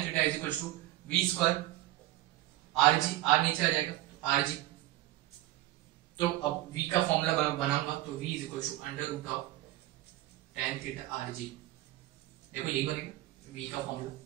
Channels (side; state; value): left; quieter; 16.5 dB